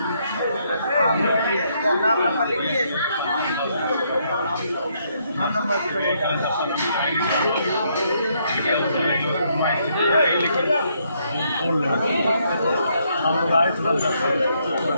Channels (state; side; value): inverted; both; correlation -0.73